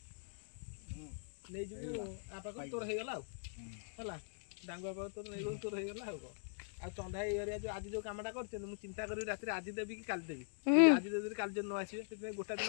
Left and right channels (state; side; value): silent; right; digital silence